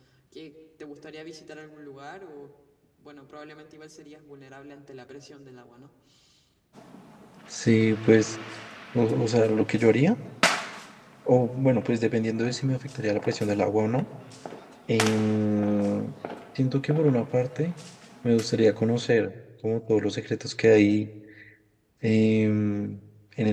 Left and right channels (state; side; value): identical; both; correlation 1.00